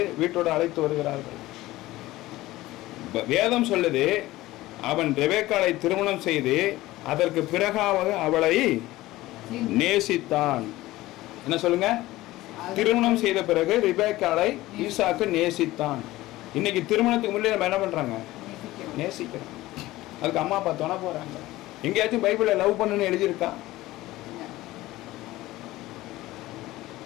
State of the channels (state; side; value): quieter; right; 17.5 dB